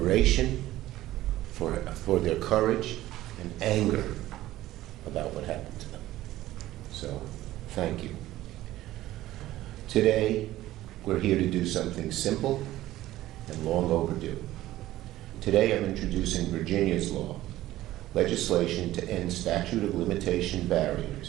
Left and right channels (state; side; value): quieter; left; 15.3 dB